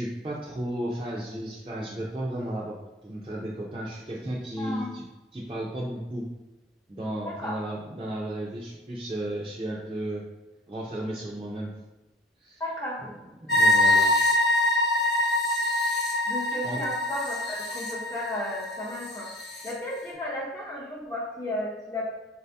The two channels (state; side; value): normal; both; correlation 0.47